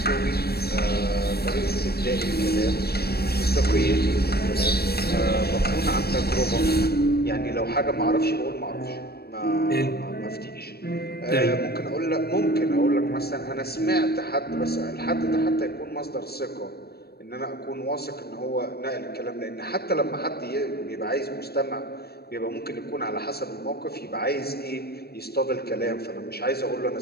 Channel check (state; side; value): late; right; 0.46 ms